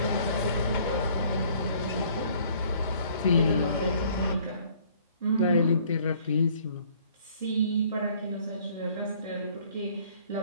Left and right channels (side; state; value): both; inverted; correlation -0.58